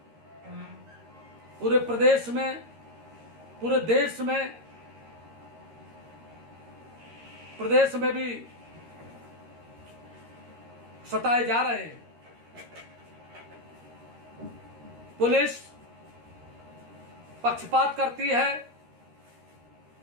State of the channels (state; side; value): late; left; 13 ms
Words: पूरे प्रदेश में, पूरे देश में, प्रदेश में भी सताए जा रहे हैं। पुलिस पक्षपात करती है,